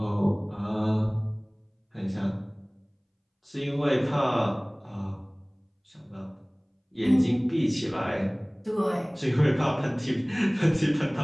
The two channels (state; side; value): identical; both; correlation 1.00